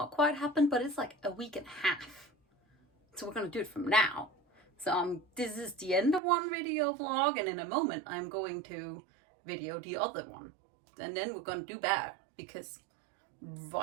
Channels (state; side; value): drops out; left; at 6.2 s